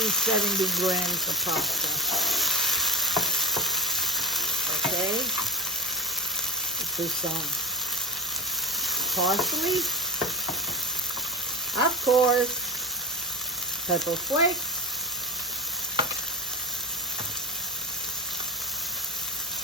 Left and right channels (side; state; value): both; normal; correlation 0.29